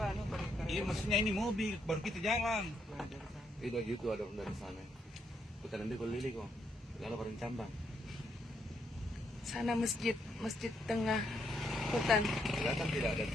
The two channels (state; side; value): normal; both; correlation 0.76